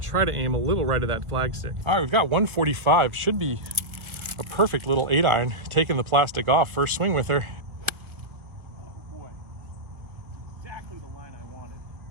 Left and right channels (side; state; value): left; late; 1.8 ms